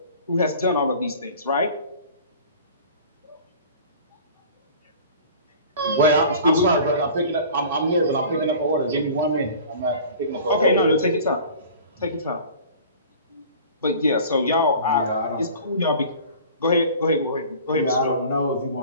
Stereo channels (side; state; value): both; inverted; correlation -0.43